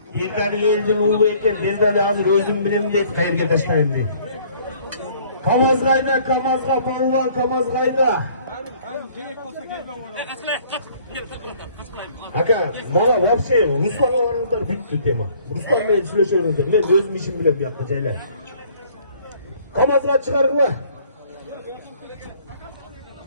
Бирдали элдин уулу экен, Бирдали азыр өзүм билем дейт, кайерге таштайм дейт. Камазгайда, Камазга палван, Камазгайда. Aka, bana вообще Ruslan'a varınızlar bitti tema. Ruslan menен сүйлөшөңүздөр. Мен өзүм ишим билем бuyakta жайлар. Kamazga чыгарыңlar.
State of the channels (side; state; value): both; inverted; correlation -0.57